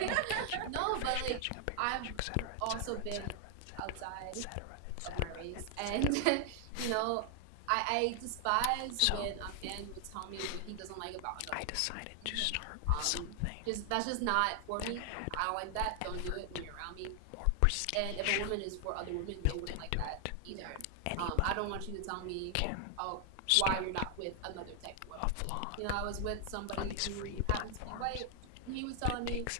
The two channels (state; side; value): different; both; correlation 0.00